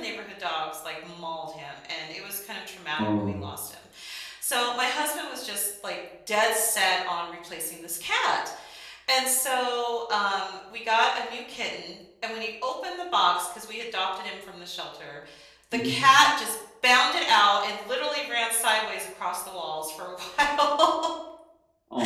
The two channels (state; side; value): identical; both; correlation 1.00